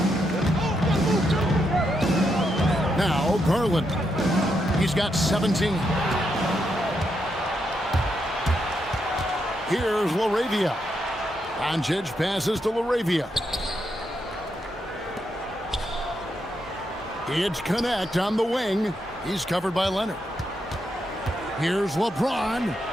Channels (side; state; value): both; normal; correlation 0.81